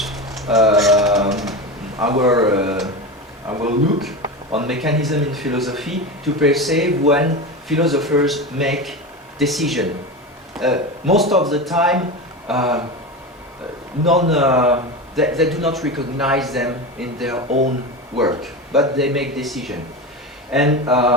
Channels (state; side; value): normal; both; correlation 0.23